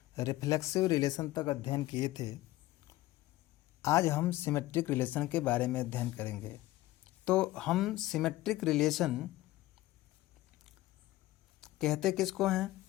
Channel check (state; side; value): quieter; right; 16.8 dB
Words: रिफ्लेक्सिव रिलेशन तक अध्ययन किए थे। आज हम सिमेट्रिक रिलेशन के बारे में अध्ययन करेंगे। तो हम सिमेट्रिक रिलेशन कहते किसको हैं?